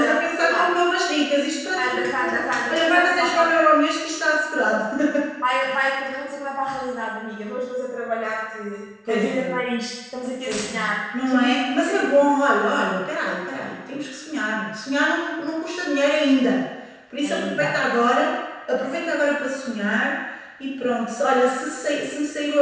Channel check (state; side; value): identical; both; correlation 1.00